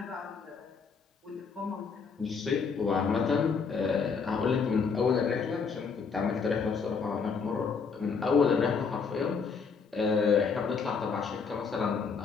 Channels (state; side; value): quieter; right; 5.5 dB